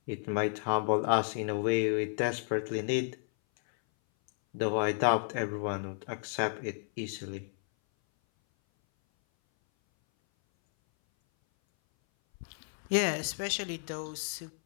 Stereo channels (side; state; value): right; silent; 56 dB below the other